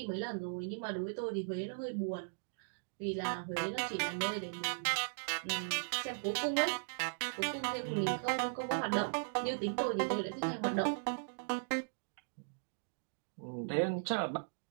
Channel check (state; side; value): silent; left; digital silence